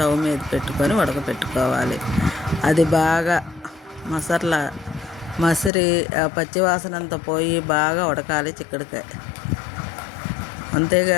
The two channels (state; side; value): drops out; right; at 5.7 s